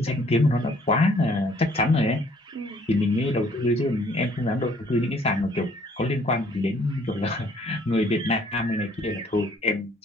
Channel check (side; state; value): both; normal; correlation 0.61